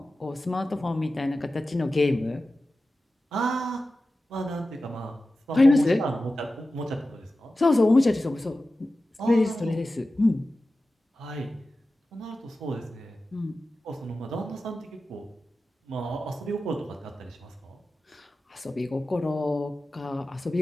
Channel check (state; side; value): normal; both; correlation 0.94